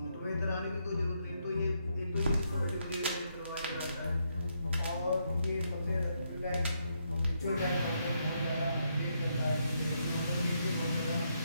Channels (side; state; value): both; inverted; correlation -0.78